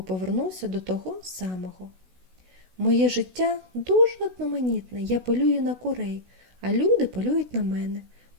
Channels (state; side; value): late; left; 16 ms